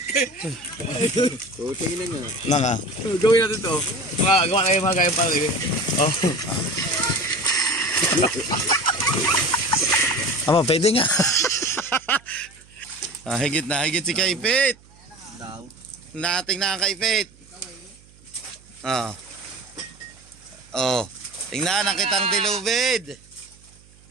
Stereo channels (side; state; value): right; noise; hum, 27 dB below the sound